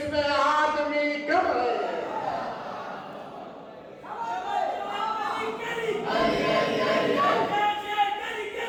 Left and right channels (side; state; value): both; identical; correlation 1.00